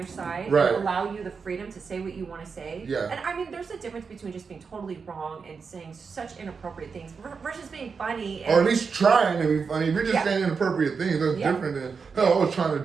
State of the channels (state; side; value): quieter; left; 5.4 dB